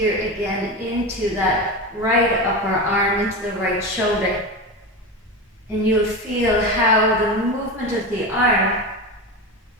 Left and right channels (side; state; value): both; normal; correlation 0.22